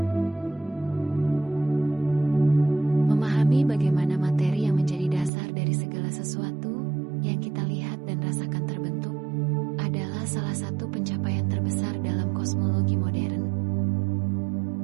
Memahami bagaimana materi yang menjadi dasar dari segala sesuatu yang kita lihat dan rasakan terbentuk adalah salah satu pencapaian terbesar dalam kosmologi modern.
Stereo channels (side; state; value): left; drops out; at 5.3 s